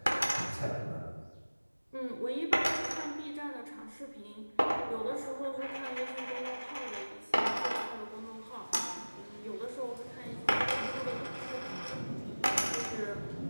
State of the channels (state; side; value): inverted; both; correlation -1.00